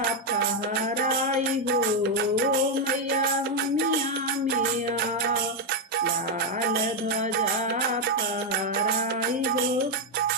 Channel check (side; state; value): both; normal; correlation 0.03